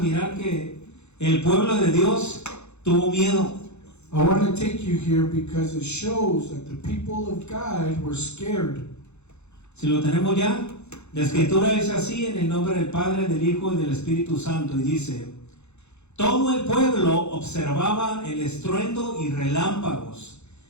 que el pueblo de Dios tuvo miedo. I want to take you here because it shows that the people of God were scared. Si lo tenemos ya, la escritura es así en el nombre del Padre, del Hijo y del Espíritu Santo, y dice: todo el pueblo observaba el estruendo y relámpagos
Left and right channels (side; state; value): right; late; 0.81 ms